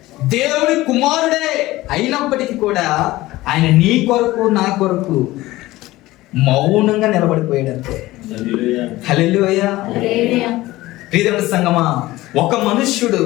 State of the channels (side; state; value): right; quieter; 17.9 dB